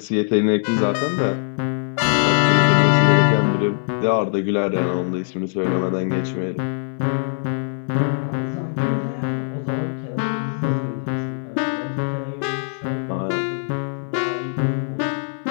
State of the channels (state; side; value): silent; right; 65 dB below the other